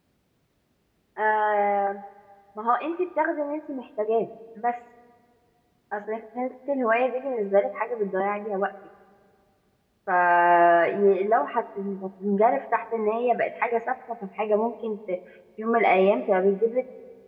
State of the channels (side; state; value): both; identical; correlation 1.00